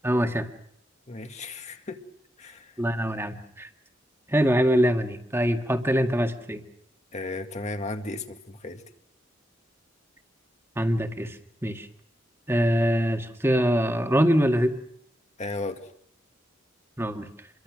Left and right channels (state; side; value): normal; both; correlation 0.86